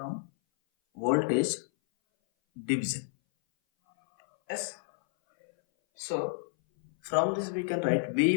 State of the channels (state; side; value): silent; right; 58 dB below the other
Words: voltage division. S. So from this we can write